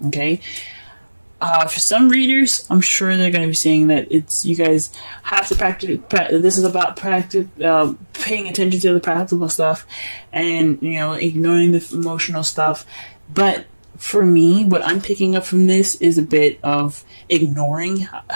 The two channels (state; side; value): inverted; both; correlation -1.00